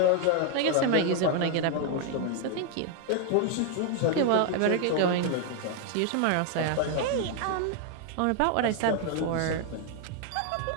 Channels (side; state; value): both; different; correlation 0.00